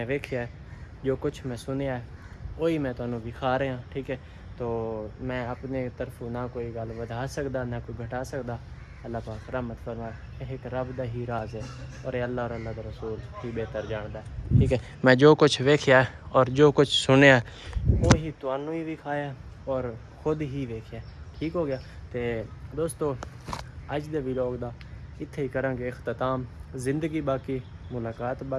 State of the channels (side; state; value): both; identical; correlation 1.00